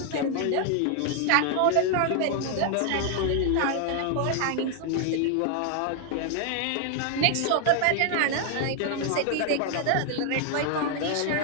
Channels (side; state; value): both; different; correlation 0.00